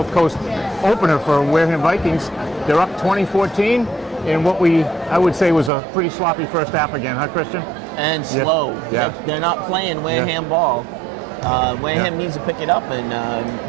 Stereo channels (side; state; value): left; drops out; at 5.7 s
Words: Coast opener for Wareham Vikings. They're up 20-14 in what I would say was a pretty sloppy first half again, huh, Christian? And slow. Yeah. They're not playing Wareham ball. Wareham needs to pick it up and